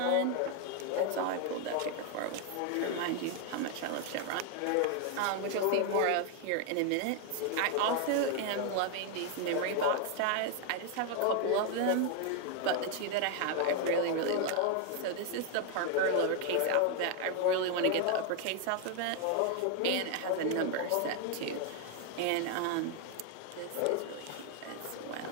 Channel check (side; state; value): both; different; correlation 0.01